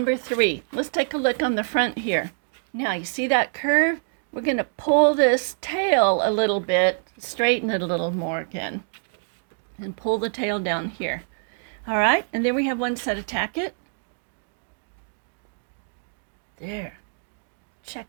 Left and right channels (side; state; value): left; silent; digital silence